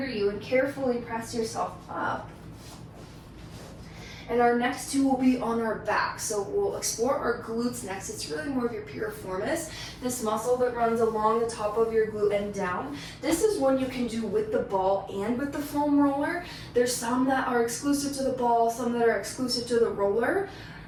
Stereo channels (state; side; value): identical; both; correlation 1.00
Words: you and carefully press yourself up. And our next two will be on our back. So we'll explore our glutes next. It's really more of your piriformis, this muscle that runs along the top of your glute and down. This is one you can do with the ball and with the foam roller. There's some that are exclusive to the ball, some that are exclusive to the roller.